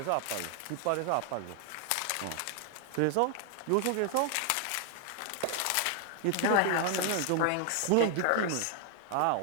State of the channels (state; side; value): different; both; correlation 0.00